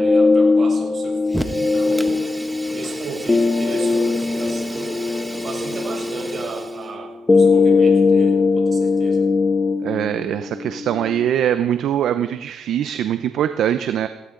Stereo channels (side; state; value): both; normal; correlation 0.83